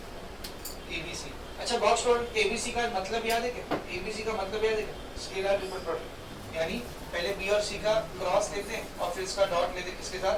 ABC. अच्छा, बॉक्स प्रोडक्ट एबीसी का मतलब याद है क्या? एबीसी का मतलब याद है क्या? स्केलर ट्रिपल प्रोडक्ट, यानी पहले बी और सी का क्रॉस लेते हैं और फिर इसका डॉट लेते हैं, किसके साथ?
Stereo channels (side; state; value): both; identical; correlation 1.00